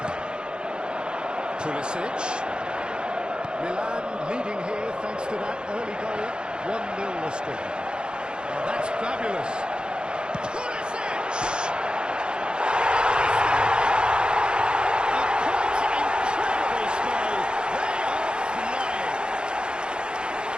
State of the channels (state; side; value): late; left; 0.050 ms